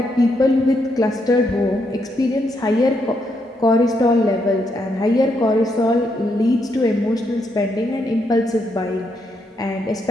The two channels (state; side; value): normal; both; correlation 0.78